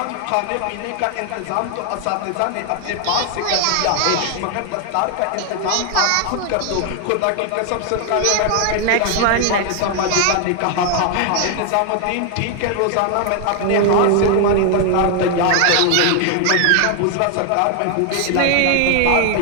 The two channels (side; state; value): both; different; correlation 0.00